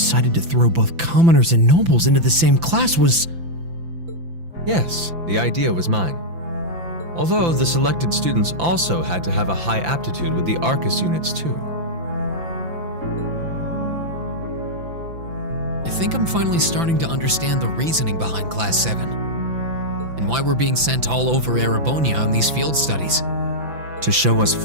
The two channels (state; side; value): late; left; 5.9 ms